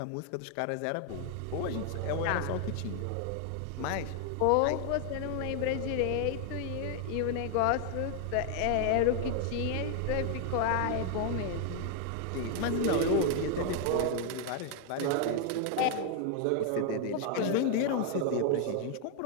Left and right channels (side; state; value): both; different; correlation 0.00